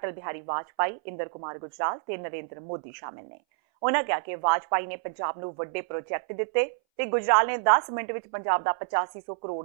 ਬਿਹਾਰੀ ਵਾਜਪਾਈ, ਇੰਦਰ ਕੁਮਾਰ ਗੁਜਰਾਲ ਤੇ ਨਰਿੰਦਰ ਮੋਦੀ ਸ਼ਾਮਿਲ ਨੇ। ਉਹਨਾਂ ਕਿਹਾ ਕਿ ਵਾਜਪਾਈ ਨੇ ਪੰਜਾਬ ਨੂੰ ਵੱਡੇ ਪ੍ਰੋਜੈਕਟ ਦਿੱਤੇ ਤੇ ਗੁਜਰਾਲ ਨੇ 10 ਮਿੰਟ ਵਿੱਚ ਪੰਜਾਬ ਦਾ 8500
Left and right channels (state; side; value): silent; left; 59 dB below the other